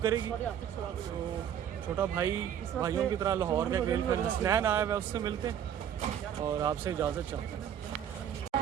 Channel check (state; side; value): quieter; left; 9.4 dB